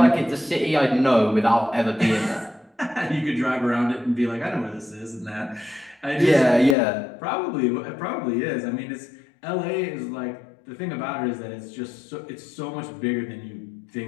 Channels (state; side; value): drops out; right; at 6.8 s